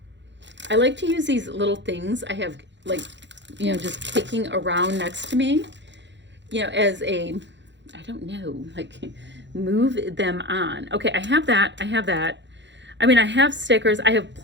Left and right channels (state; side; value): late; left; 0.52 ms